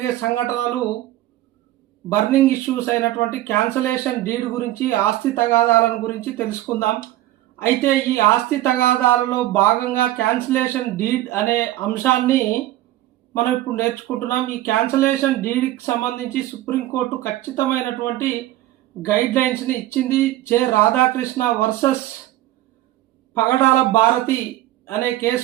సంఘటనలు బర్నింగ్ ఇష్యూస్ అయినటువంటి క్యాన్సలేషన్ డీడ్ గురించి, ఆస్తి తగాదాలను గురించి తెలుసుకుందాం. అయితే ఈ ఆస్తి తగాదాలలో భాగంగా క్యాన్సలేషన్ డీడ్ అనే అంశాన్ని మనం ఇప్పుడు నేర్చుకుంటున్నాం. ఈ క్యాన్సలేషన్ డీడ్కి సంబంధించి సుప్రీంకోర్టు ఖచ్చితమైనటువంటి గైడ్ లైన్స్ని ఇచ్చింది. జె రాధాకృష్ణ వర్సెస్ పగడాల భారతి అనే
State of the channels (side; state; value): left; quieter; 15.0 dB